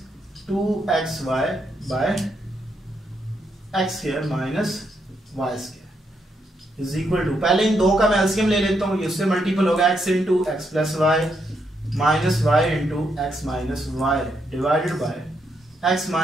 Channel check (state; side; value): normal; both; correlation 0.78